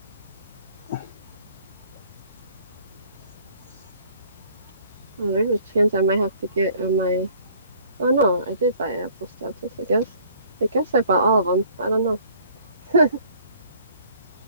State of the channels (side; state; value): both; inverted; correlation -0.55